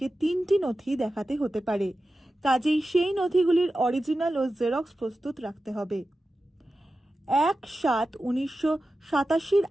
3টি নথি দেখাতে হতে পারে, কাজেই সেই নথিগুলির অরিজিনাল ও জেরক্স প্রস্তুত রাখতে হবে। 1/7/1987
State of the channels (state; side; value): normal; both; correlation 0.93